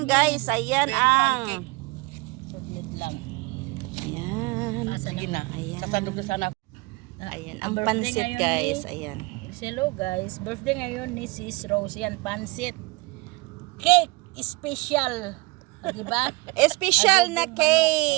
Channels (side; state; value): left; quieter; 24.6 dB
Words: guys. Ayan ang... Chocolate lang. Ayan. Asa na? Ayan. Sasandog na sana. Ayan, Ang ang birthday pansit, ngayon guys. ni- Ayan. Hello guys, birthday ngayon ni Sis Rose. Yan, pansit. Cake special. Diba? Special na Adobong